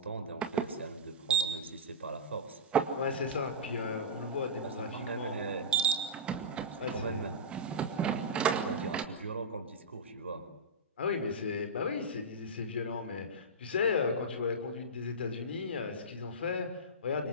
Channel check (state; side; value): normal; both; correlation -0.12